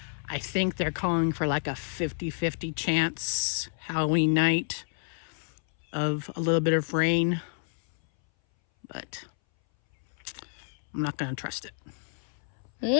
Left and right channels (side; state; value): right; silent; 58 dB below the other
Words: I think they're calling for like a 50-50 chance Halloween night of a little bit of rain, but I'm not going to trust it.